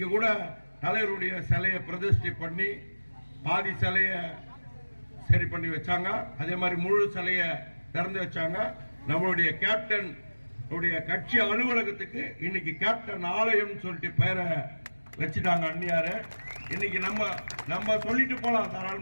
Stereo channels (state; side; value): inverted; both; correlation -1.00